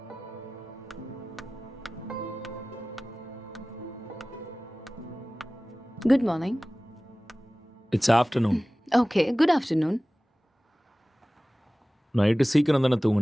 Good morning. It's afternoon. Okay, good afternoon. Night சீக்கிரம் தானே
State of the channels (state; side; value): normal; both; correlation 0.98